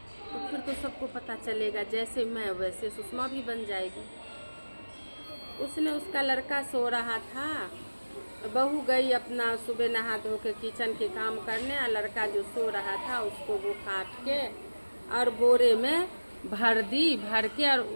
तो फिर तो सबको पता चलेगा, जैसे मैं वैसे सुषमा भी बन जाएगी। उसने, उसका लड़का सो रहा था, बहू गई अपना सुबह नहा धो के किचन के काम करने, और लड़का जो सो रहा था उसको वो काट के और बोरे में भर दी, भर के और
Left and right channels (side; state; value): both; inverted; correlation -1.00